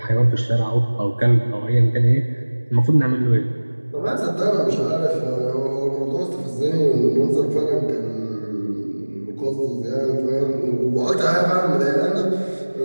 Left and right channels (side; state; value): both; inverted; correlation -1.00